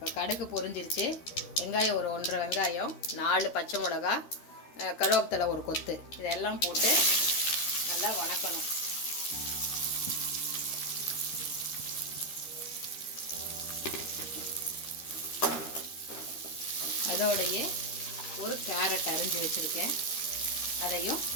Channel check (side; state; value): right; late; 13 ms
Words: கடுகு பொரிஞ்சிருச்சு. வெங்காயம் ஒரு 1.5 வெங்காயம், 4 பச்சை மிளகா, கருவேப்பிலை ஒரு கொத்து, இதெல்லாம் போட்டு நல்லா வணக்கணும். அதோடையே ஒரு கேரட் அரிஞ்சு வச்சுருக்கேன், அதையும்